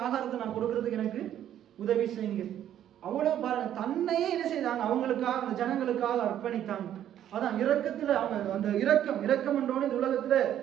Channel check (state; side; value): quieter; left; 10.9 dB